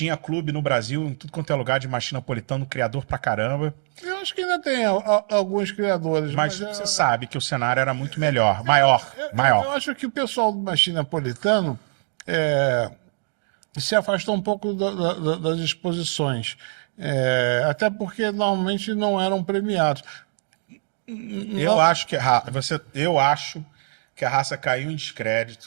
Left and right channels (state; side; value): silent; left; 60 dB below the other